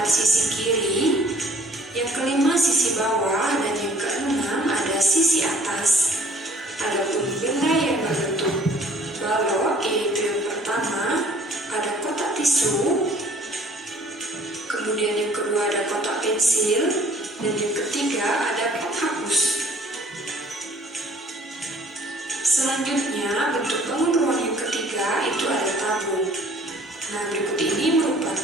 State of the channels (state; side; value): normal; both; correlation 0.56